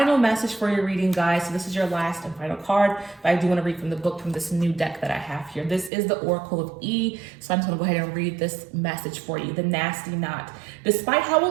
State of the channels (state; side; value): drops out; left; at 5.9 s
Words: message for your reading, guys. So this is your last and final card, but I do want to read from the book from this new deck that I have here. This is the Oracle of E. So I'm just going to go ahead and read this message for you. The Nasty Knot. Despite how